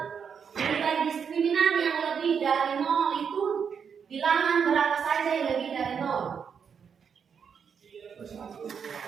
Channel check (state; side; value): quieter; left; 6.9 dB